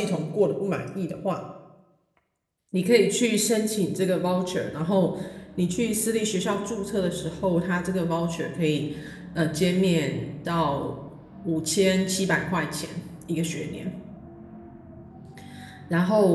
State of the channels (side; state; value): both; identical; correlation 1.00